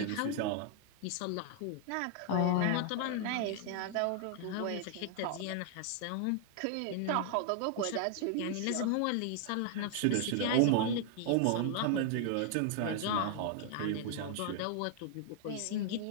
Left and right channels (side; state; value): both; different; correlation 0.00